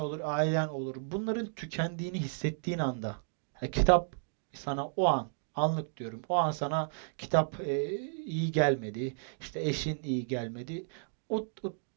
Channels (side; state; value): left; silent; digital silence